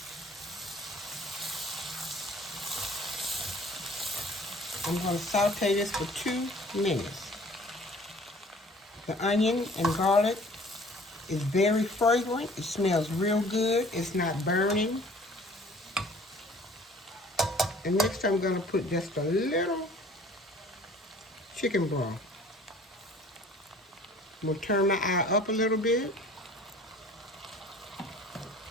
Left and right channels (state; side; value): normal; both; correlation 0.51